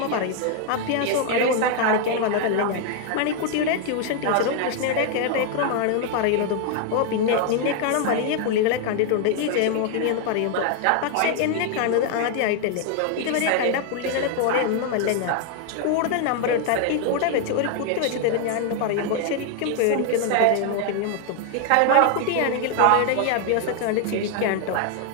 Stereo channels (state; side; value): different; both; correlation 0.00